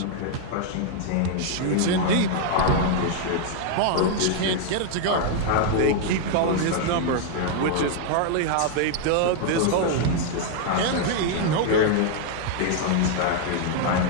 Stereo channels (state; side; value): different; both; correlation 0.00